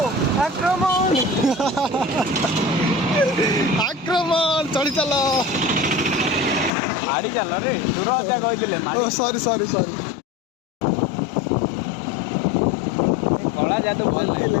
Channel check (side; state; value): right; drops out; at 6.7 s